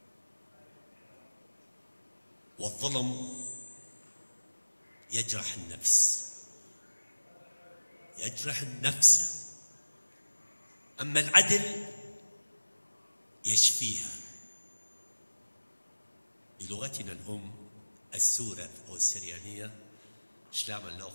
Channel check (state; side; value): inverted; both; correlation -1.00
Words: والظلم يجرح النفس، يجرح النفس، أما العدل يشفيها. بلغتنا الأم السورة أو السريانية شلام